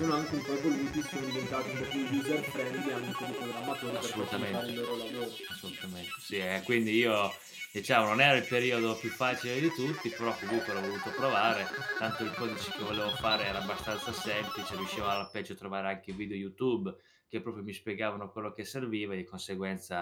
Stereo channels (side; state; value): both; identical; correlation 1.00